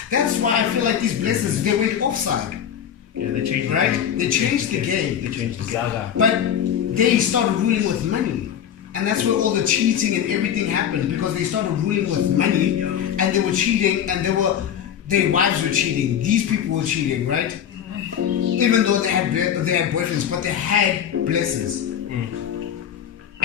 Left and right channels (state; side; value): quieter; right; 9.1 dB